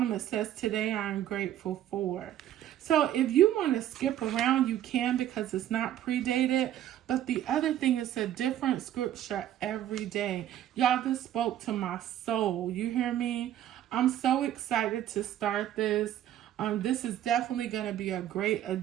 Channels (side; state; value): left; quieter; 11.7 dB